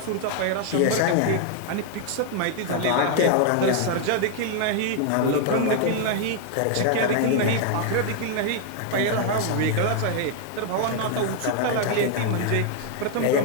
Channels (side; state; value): both; different; correlation 0.00